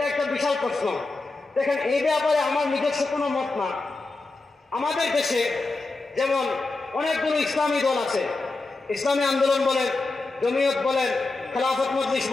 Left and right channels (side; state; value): right; quieter; 3.5 dB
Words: একটা বিশাল প্রশ্ন। দেখেন, এই ব্যাপারে আমার নিজস্ব কোনো মত না। আমাদের দেশে যেমন অনেকগুলো ইসলামী দল আছে, ইসলামী আন্দোলন বলেন, জমিয়ত বলেন, খেলাফত মজলিস